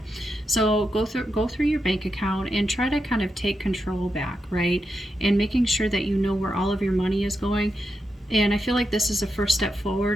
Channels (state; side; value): normal; both; correlation 0.86